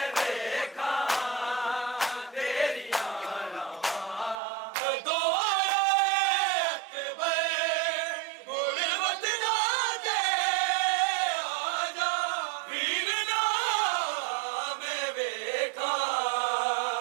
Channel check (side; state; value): left; drops out; at 4.4 s